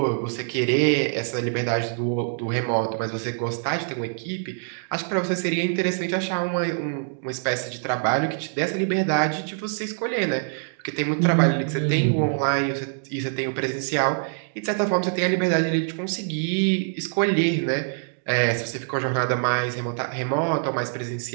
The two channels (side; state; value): left; silent; digital silence